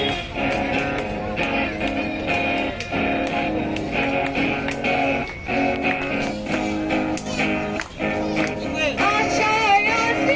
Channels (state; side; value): identical; both; correlation 1.00